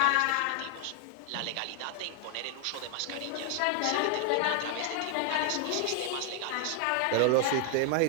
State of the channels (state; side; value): different; both; correlation 0.00